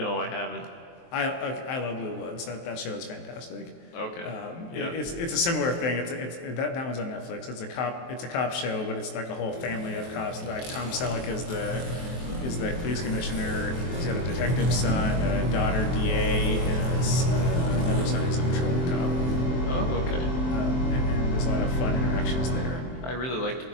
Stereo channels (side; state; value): right; late; 23 ms